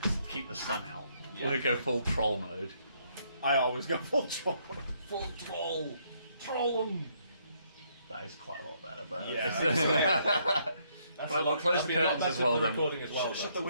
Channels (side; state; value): both; inverted; correlation -0.71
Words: keep the sun out. We'll go full troll mode. I always go full troll. Full troll. Troll them. That is quite a lot better, but Yeah. Well, close the curtains as well then. Recording as well. Shut the